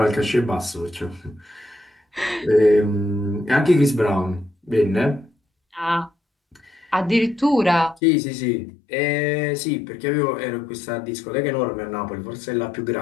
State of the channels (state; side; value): drops out; right; at 8.0 s